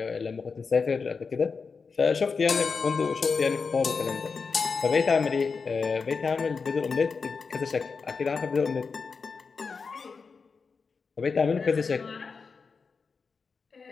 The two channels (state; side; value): quieter; right; 5.0 dB